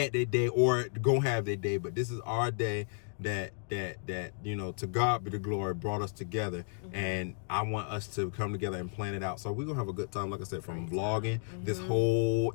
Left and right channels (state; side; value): silent; right; digital silence